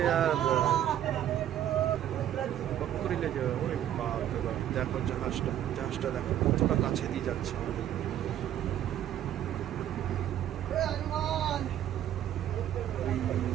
আর করিলে যে ওই বাপরে বাপ। দেখো জাহাজটা দেখো কতটা কাছে দিয়ে যাচ্ছে আমাদের।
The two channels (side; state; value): left; quieter; 11.3 dB